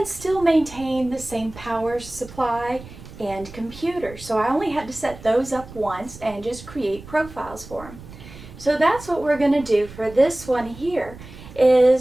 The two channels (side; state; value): right; noise; rumble, 17 dB below the sound